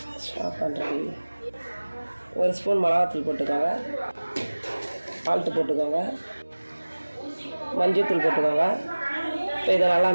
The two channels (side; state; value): both; inverted; correlation -1.00